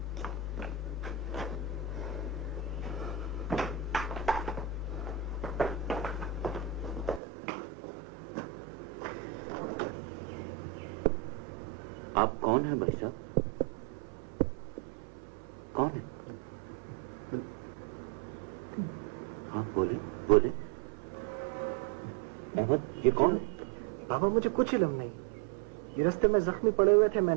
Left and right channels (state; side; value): drops out; left; at 7.2 s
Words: आप कौन हैं भाई साहब? कौन है? हाँ बोले बोले। अहमद, ये कौन है? बाबा मुझे कुछ इल्म नहीं। ये रास्ते में जख्मी पड़े हुए थे,